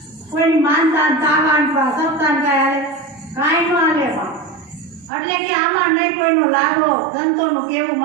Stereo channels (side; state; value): left; drops out; at 5.1 s